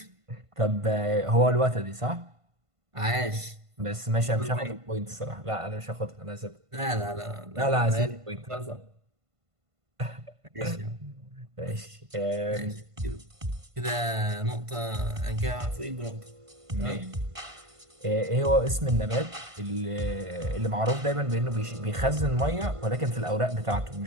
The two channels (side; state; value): left; late; 1.5 ms